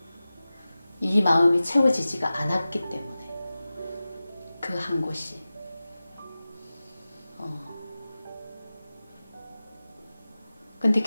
이 마음이 채워지지가 않았기 때문에 그 한 곳이 근데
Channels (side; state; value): both; inverted; correlation -0.96